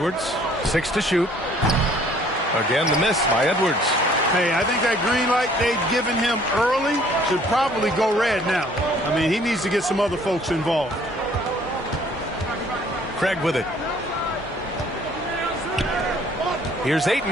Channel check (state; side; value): normal; both; correlation 0.58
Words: 6 to shoot. Again, the miss by Edwards. Hey, I think that green light they'd given him early should probably go red now. I mean, he needs to get some other folks involved. Craig with it. Here's